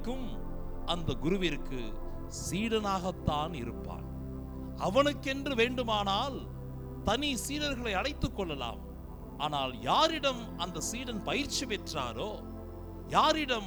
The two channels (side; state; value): both; identical; correlation 1.00